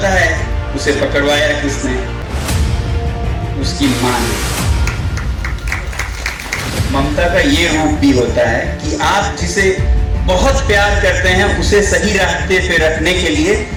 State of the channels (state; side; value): identical; both; correlation 1.00